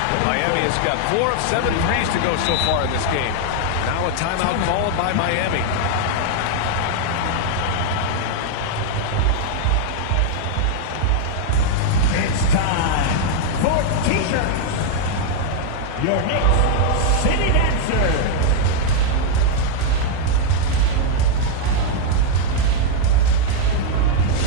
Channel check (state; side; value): different; both; correlation 0.00